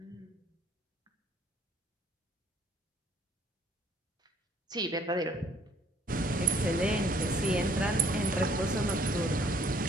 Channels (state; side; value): normal; both; correlation 0.61